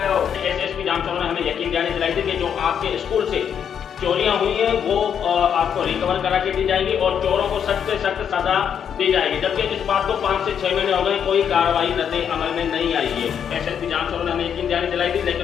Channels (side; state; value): right; quieter; 8.1 dB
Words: एसएसपी जाम छोरो ने हमें यकीन दिलाई थी कि जो आपके स्कूल से चोरियां हुई हैं वो आपको रिकवर करा के दी जाएगी और चोरों को सख्त से सख्त सजा दी जाएगी, जबकि इस बात को 5 से 6 महीने हो गए, कोई कार्रवाई रद्द अमल में नहीं आई है। एसएसपी जाम छोरो ने हमें यकीन दिलाई थी,